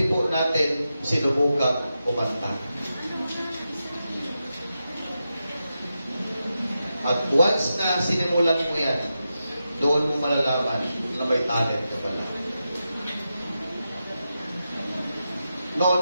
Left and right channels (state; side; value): inverted; both; correlation -0.89